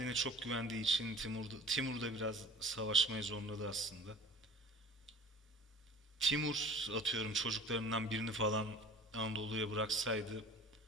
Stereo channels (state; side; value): normal; both; correlation 0.44